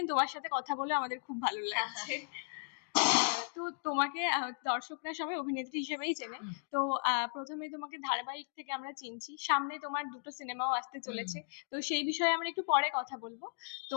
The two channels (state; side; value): silent; right; digital silence